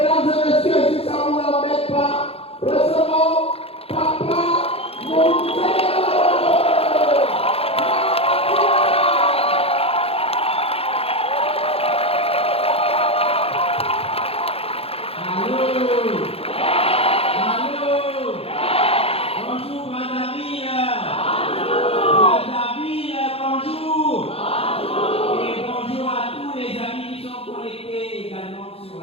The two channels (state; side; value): late; right; 0.28 ms